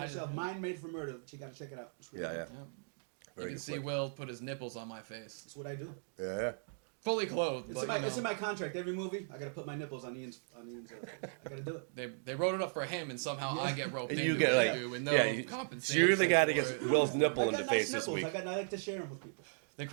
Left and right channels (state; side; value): silent; left; digital silence